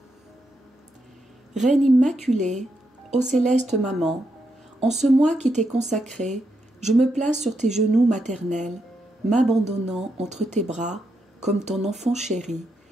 Reine immaculée, ô céleste maman, en ce mois qui t'est consacré, je me place sur tes genoux maternels, m'abandonnant entre tes bras comme ton enfant chéri,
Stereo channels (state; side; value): normal; both; correlation 0.82